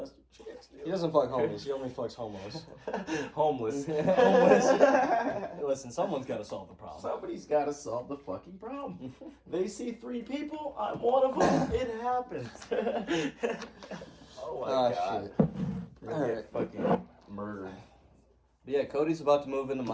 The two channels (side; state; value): both; identical; correlation 1.00